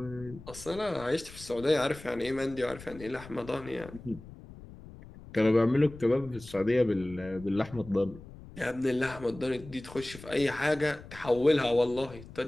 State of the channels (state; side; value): noise; left; rumble, 17 dB below the sound